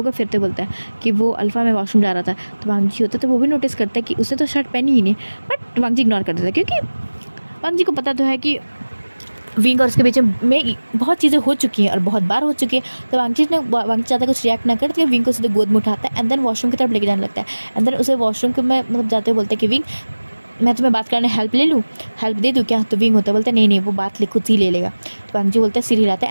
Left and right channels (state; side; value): inverted; both; correlation -1.00